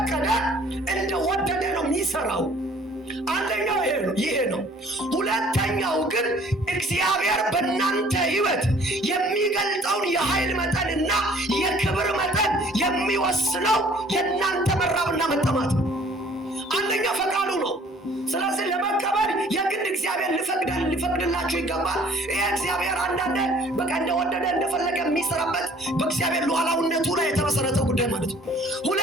እንደወደደ ነው የሚሰራው። አንደኛው ይሄ ነው። ሁለተኛው ግን እግዚአብሔር በእናንተ ህይወት የሚገልጠውን የኃይል መጠንና የክብር መጠን የሚወስነው የእናንተ መራብና መጠማት ነው። አንደኛ ፈቃዱ ነው። ስለዚህ ለመቀበል የግድ እግዚአብሔር ሊፈቅድላችሁ ይገባል። ይሄ እግዚአብሔር አንዳንዴ በቃ እንደወደደ እንደፈለገ የሚሰራበት በእግዚአብሔር ሉዓላዊነቱ ላይ የተመሰረተ ጉዳይ ማለት ነው።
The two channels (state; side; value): normal; both; correlation 0.55